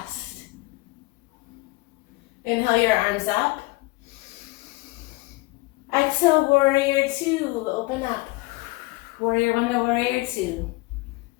Inhale your arms up. Exhale, warrior 2. Open up. Warrior 1 to warrior 2.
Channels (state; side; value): quieter; right; 22.8 dB